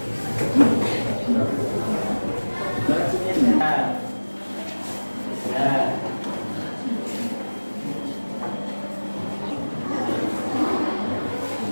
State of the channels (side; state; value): both; inverted; correlation -1.00